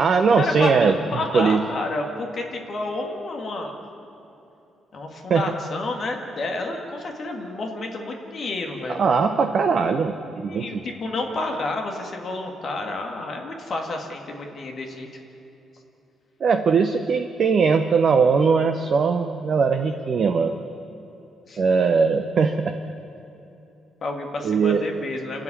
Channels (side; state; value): left; quieter; 3.7 dB